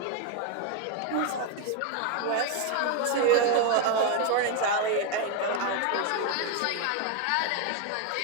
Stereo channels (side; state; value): both; different; correlation 0.01